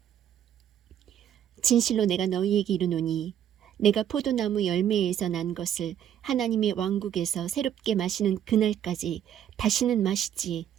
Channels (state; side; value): quieter; left; 10.1 dB